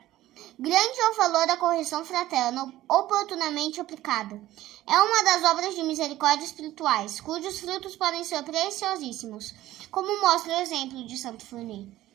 Grande é o valor da correção fraterna oportunamente aplicada. É uma das obras de misericórdia espirituais, cujos frutos podem ser preciosíssimos, como mostra o exemplo de Santo Fournier.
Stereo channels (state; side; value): quieter; left; 15.1 dB